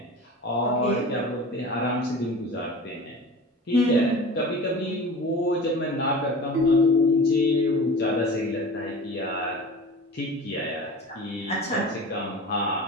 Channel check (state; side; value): normal; both; correlation 0.36